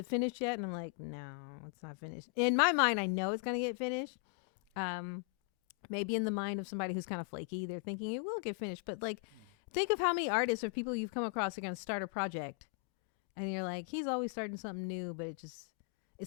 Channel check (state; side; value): quieter; right; 34.9 dB